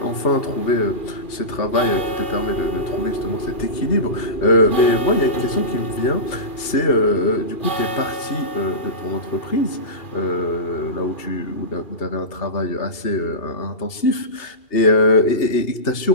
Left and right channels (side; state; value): right; late; 2.7 ms